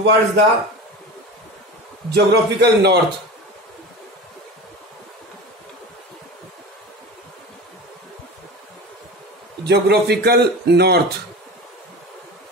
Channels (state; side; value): normal; both; correlation 0.31